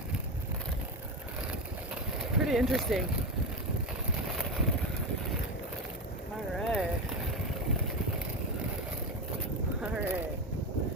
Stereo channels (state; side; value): normal; both; correlation 0.16